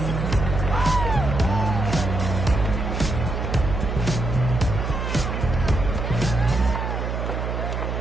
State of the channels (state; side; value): noise; right; hum, 2 dB below the sound